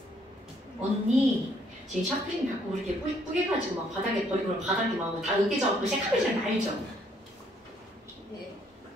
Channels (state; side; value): normal; both; correlation 0.67